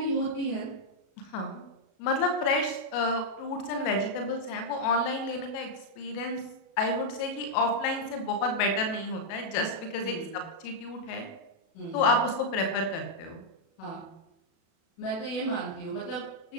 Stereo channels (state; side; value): late; right; 36 ms